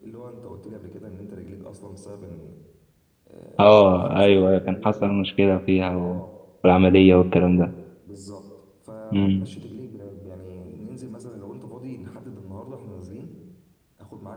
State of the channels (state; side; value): identical; both; correlation 1.00